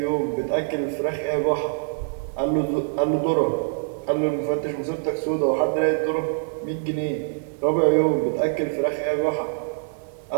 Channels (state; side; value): silent; left; 62 dB below the other